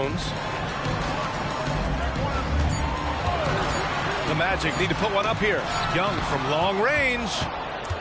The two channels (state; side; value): identical; both; correlation 1.00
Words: The Magic need to put one up here. Young from long range.